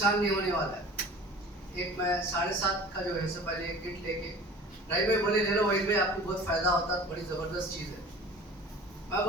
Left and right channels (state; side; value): normal; both; correlation 0.42